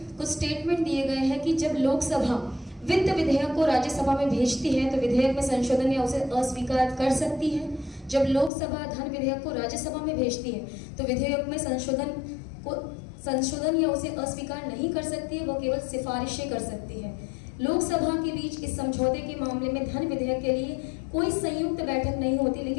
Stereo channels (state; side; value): drops out; right; at 8.5 s